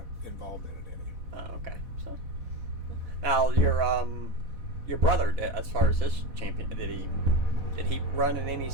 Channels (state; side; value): late; left; 4.1 ms